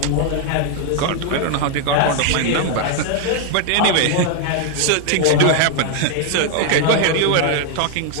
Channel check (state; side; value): different; both; correlation 0.00